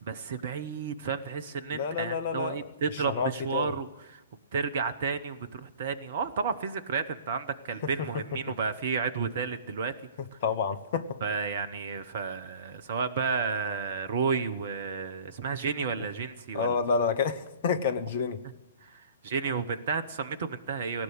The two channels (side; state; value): both; inverted; correlation -0.45